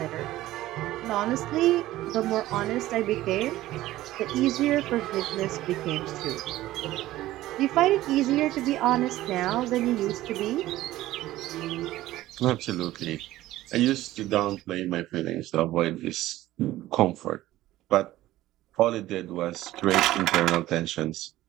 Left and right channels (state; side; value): quieter; left; 15.6 dB